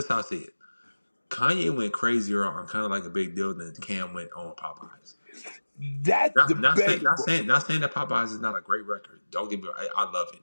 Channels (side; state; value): both; inverted; correlation -1.00